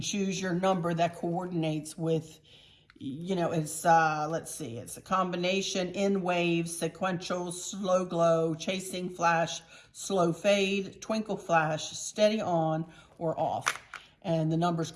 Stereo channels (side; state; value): both; identical; correlation 1.00